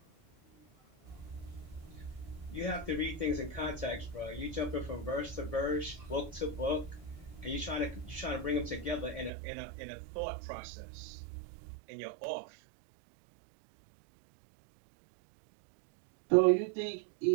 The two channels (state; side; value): drops out; left; at 9.3 s